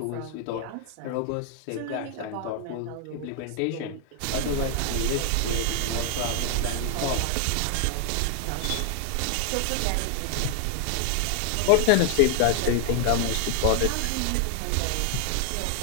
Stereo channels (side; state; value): both; different; correlation 0.00